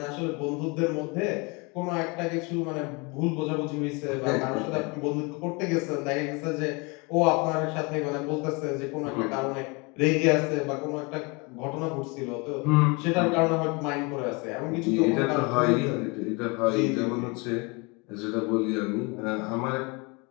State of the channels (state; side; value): quieter; right; 28.9 dB